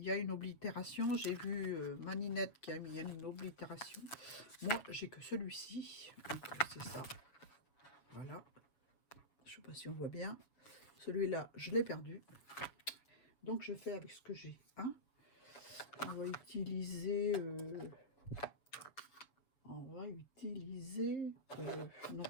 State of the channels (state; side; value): late; right; 6.9 ms